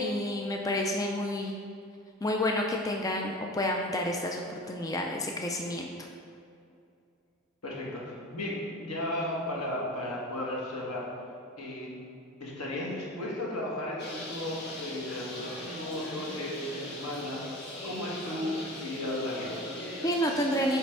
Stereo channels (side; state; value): both; normal; correlation 0.35